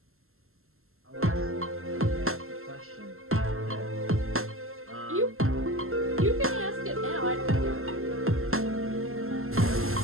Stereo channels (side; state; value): left; late; 0.62 ms